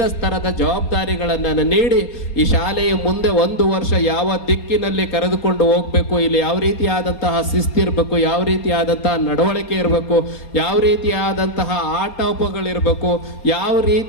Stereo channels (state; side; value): late; right; 4.3 ms